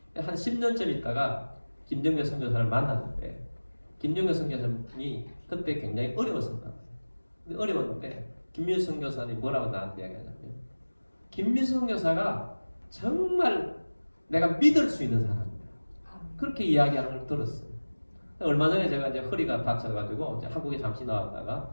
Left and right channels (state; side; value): inverted; both; correlation -1.00